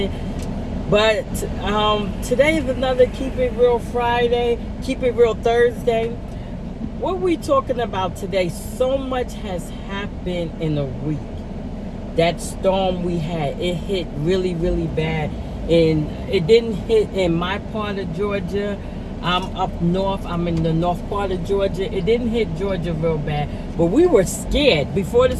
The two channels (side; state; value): both; identical; correlation 1.00